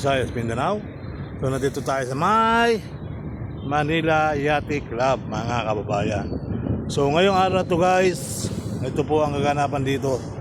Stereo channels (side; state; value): both; identical; correlation 1.00